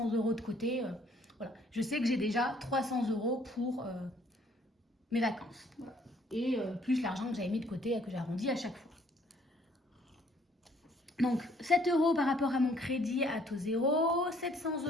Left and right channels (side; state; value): both; normal; correlation 0.62